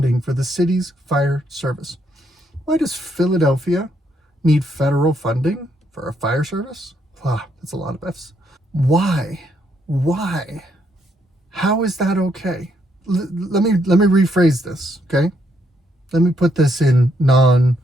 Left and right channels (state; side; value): normal; both; correlation 0.74